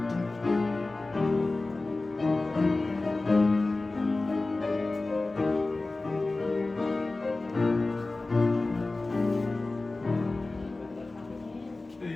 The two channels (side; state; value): right; quieter; 3.2 dB